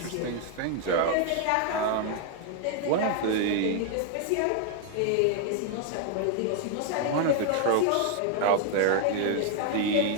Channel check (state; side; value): different; both; correlation 0.00